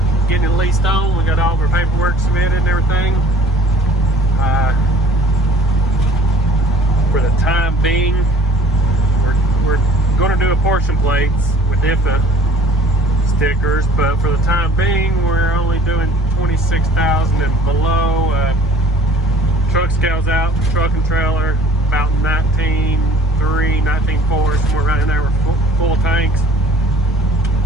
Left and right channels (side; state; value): both; normal; correlation 0.51